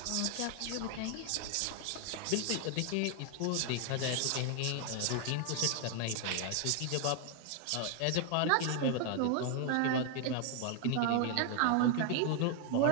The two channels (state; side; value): different; both; correlation 0.00